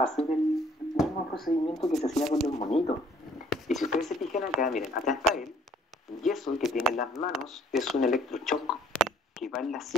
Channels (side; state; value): both; normal; correlation 0.60